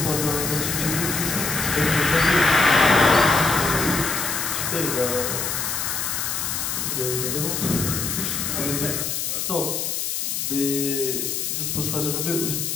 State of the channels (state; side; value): noise; left; hiss, 2 dB below the sound